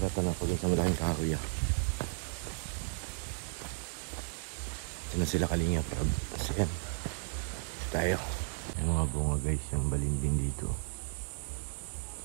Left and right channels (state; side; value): silent; left; 55 dB below the other